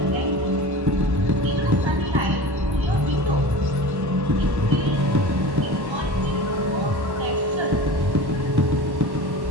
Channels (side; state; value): left; late; 1.1 ms